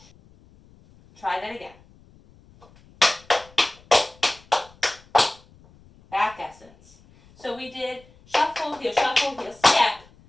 Try that again. Back essence. So we did shuffle, heel, step.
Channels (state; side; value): noise; left; rumble, 27 dB below the sound